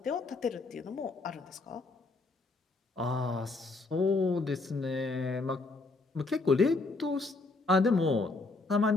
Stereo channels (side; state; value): right; quieter; 3.5 dB